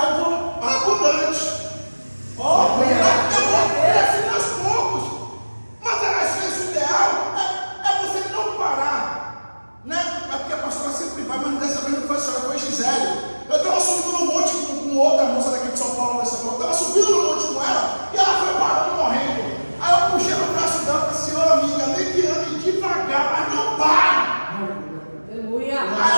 eu vou abundante, eu vou crescer aos poucos, mas às vezes o ideal é você não parar, né? É porque a pastora sempre vai, mas dessa vez não foi só, foi Gisele. Eu estava subindo no monte com outra moça daqui de São Paulo, eu estava subindo no monte com ela, e ela foi parando, morrendo. Aí eu puxei no braço dela e falei, senhora amiga, nem que ande devagar, mas não pare. Aleluia. Aí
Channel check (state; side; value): inverted; both; correlation -1.00